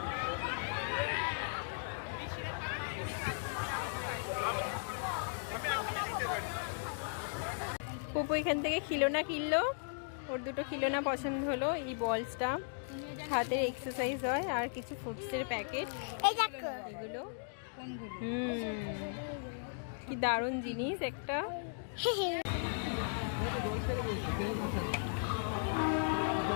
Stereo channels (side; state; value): right; silent; digital silence